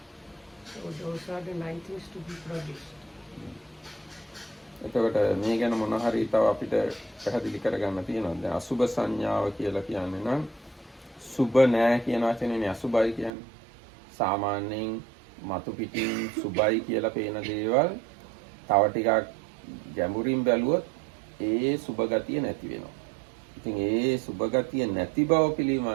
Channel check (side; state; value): left; drops out; at 13.3 s